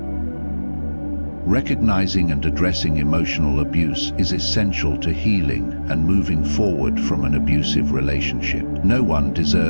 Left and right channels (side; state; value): both; inverted; correlation -1.00